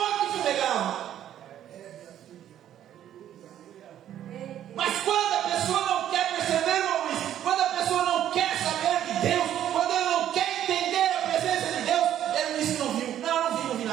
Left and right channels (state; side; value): quieter; left; 11.1 dB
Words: fumegava. Mas quando a pessoa não quer perceber, irmão Luiz, quando a pessoa não quer saber de Deus, quando ela não quer entender a presença de Deus, ela diz que não viu. Não vi